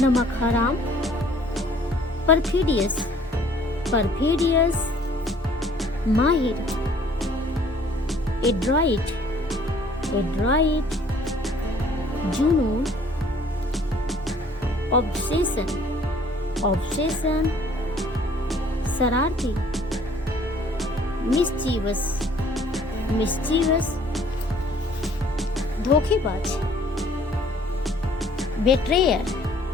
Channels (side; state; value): both; normal; correlation 0.57